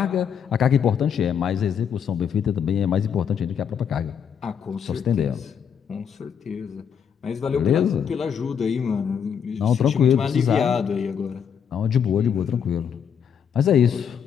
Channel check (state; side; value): quieter; right; 7.7 dB